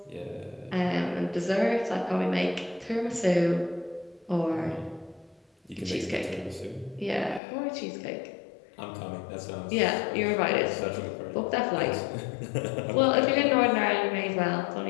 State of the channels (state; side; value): drops out; right; at 7.4 s